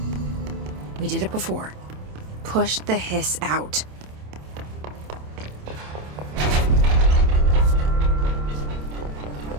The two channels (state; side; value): late; left; 27 ms